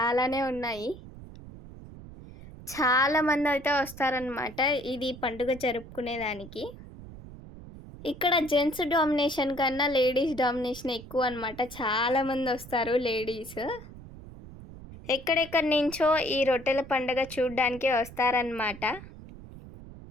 ఉన్నాయి. చాలామంది అయితే వస్తారనమాట ఇది పండుగ జరుపుకునేదానికి. ఇక్కడ జెంట్స్ డామినేషన్ కన్నా లేడీస్ డామినేషన్ ఎక్కువ అనమాట. చాలామంది వస్తారు లేడీస్. ఎక్కడెక్కడి నుంచో ఈ రొట్టెల పండుగ చూడడానికి వస్తారనమాట.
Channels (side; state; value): right; noise; rumble, 16 dB below the sound